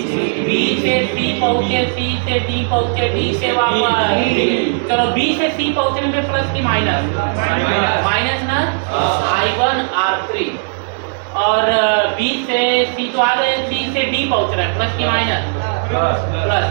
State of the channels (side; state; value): left; silent; digital silence